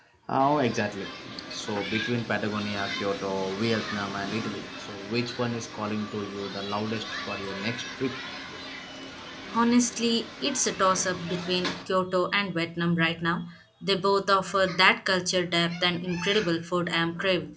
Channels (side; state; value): both; identical; correlation 1.00